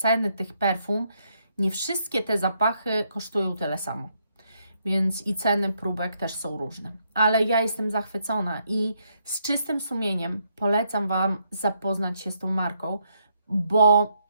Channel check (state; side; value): inverted; both; correlation -0.76